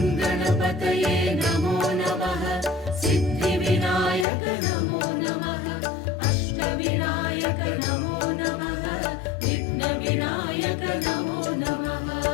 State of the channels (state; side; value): drops out; right; at 4.2 s